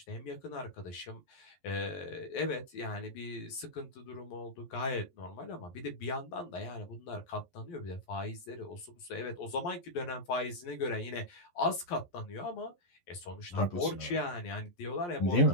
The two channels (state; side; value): late; right; 11 ms